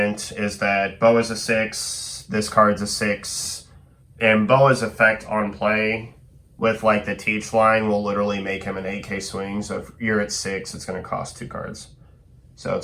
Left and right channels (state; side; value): identical; both; correlation 1.00